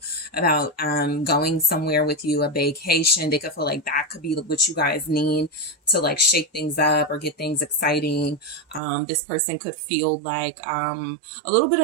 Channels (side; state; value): left; drops out; at 8.8 s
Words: about going somewhere with you, a vacation. They could feel like that could be what you guys need to like shake things up or get things exciting. This person could feel like a little bit